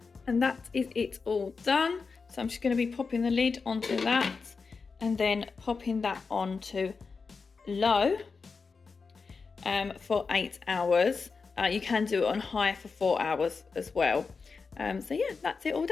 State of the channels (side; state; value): right; quieter; 4.8 dB